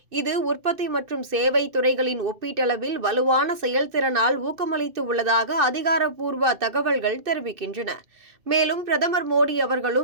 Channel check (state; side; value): late; left; 2.6 ms